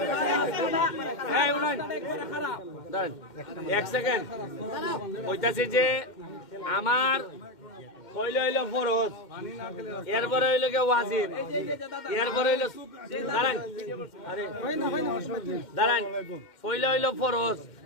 এই উনাইন দাঁড়ান 1 সেকেন্ড কইতাছি যে আমার কইলে হইলো ফরজ এরপরে হইলো কে ওয়াজিব এরপরে হইলো দাঁড়ান আরে দাঁড়ান কইলে হইলো ফরজ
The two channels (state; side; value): late; right; 2.1 ms